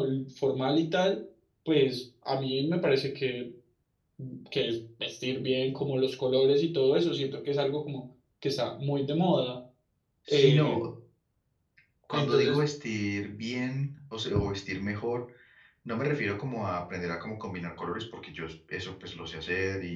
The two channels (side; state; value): both; identical; correlation 1.00